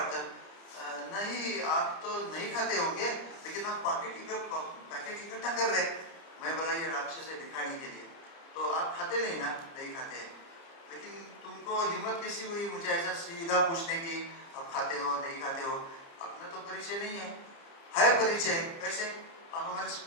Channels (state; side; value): late; right; 30 ms